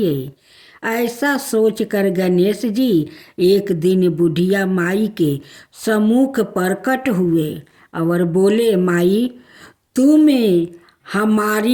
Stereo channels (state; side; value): identical; both; correlation 1.00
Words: ऐसा सोचकर गणेश जी एक दिन बुढ़िया माई के सम्मुख प्रकट हुए और बोले, माई तुम